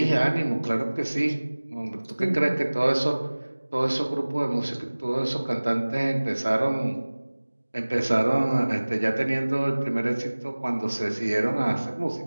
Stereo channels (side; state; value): both; inverted; correlation -1.00